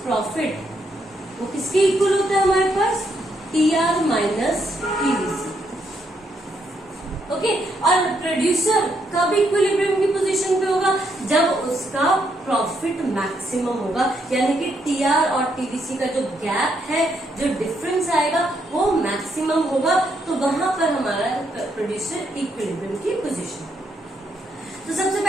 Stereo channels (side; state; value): both; normal; correlation 0.76